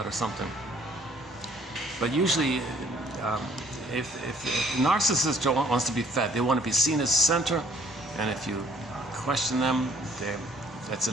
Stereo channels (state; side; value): normal; both; correlation 0.60